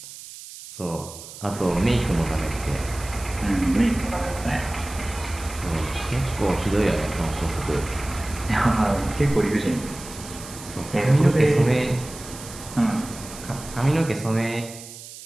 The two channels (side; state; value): right; noise; hiss, 14 dB below the sound